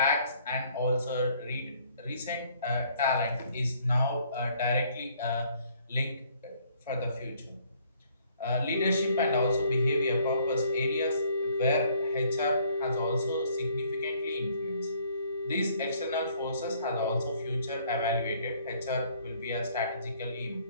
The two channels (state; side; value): inverted; both; correlation -0.62